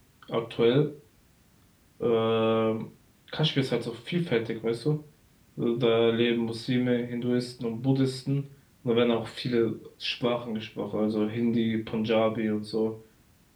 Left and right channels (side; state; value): both; identical; correlation 1.00